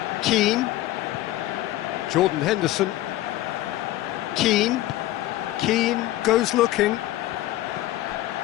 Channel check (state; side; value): quieter; right; 15.6 dB